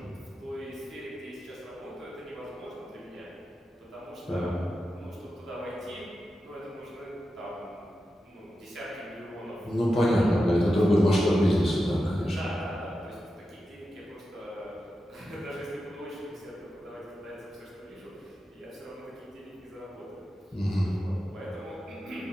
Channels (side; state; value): both; normal; correlation 0.90